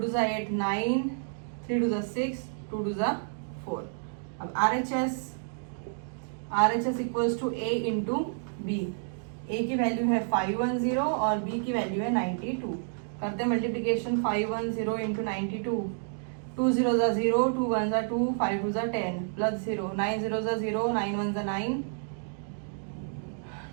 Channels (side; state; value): left; silent; digital silence